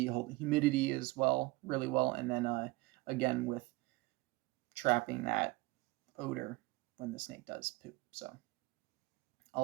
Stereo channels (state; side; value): quieter; left; 21.3 dB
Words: holding humidity as well really well, and then again with trapping that odor when the snake does poop. So